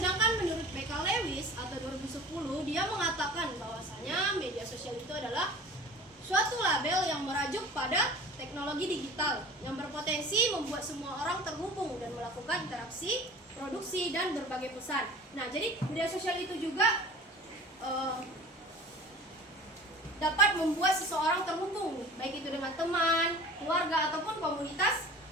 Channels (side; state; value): both; normal; correlation 0.41